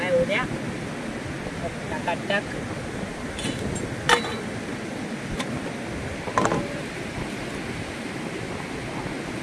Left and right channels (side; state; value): both; identical; correlation 1.00